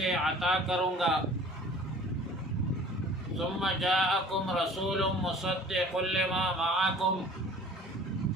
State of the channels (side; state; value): both; normal; correlation 0.47